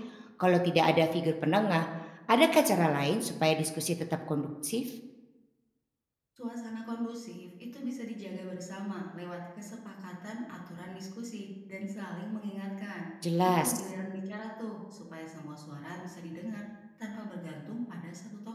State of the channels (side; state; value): both; identical; correlation 1.00